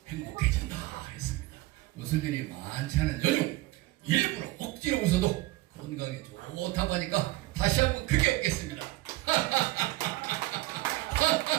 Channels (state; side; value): quieter; left; 18.5 dB